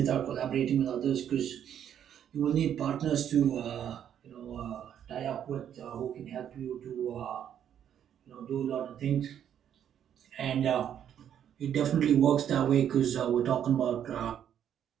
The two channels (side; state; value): left; quieter; 9.5 dB